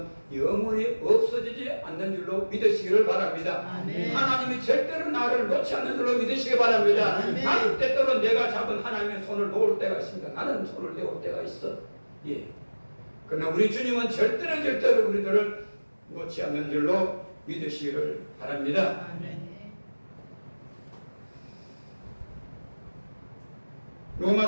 영원히 없어지지 않는 줄로 믿으시기를 바랍니다. 아멘. 하나님이 절대로 나를 놓지 않는 줄로 믿으시기 바랍니다. 아멘. 나는 때때로 내가 잡은 하나님의 손을 놓을 때가 있습니다. 나는 손을 내올 때가 있어. 예. 그러나 우리 주님은 절대로 우리들을 놓지 않는 줄로 믿으시기를 바랍니다. 아멘.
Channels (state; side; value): inverted; both; correlation -1.00